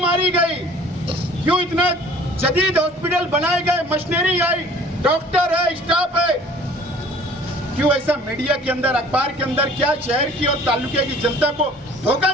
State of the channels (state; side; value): normal; both; correlation 0.50